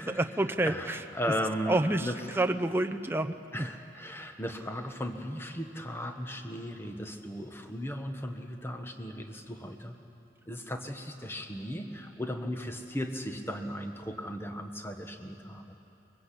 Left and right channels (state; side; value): normal; both; correlation 0.74